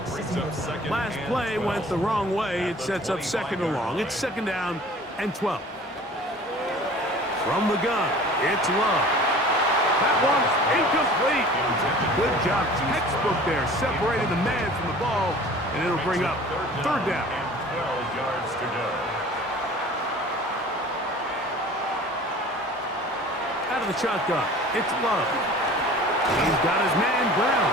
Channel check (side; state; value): both; normal; correlation 0.45